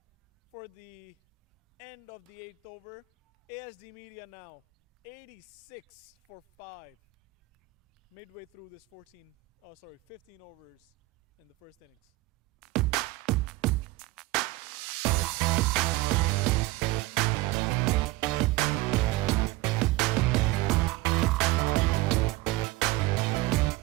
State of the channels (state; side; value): quieter; left; 18.3 dB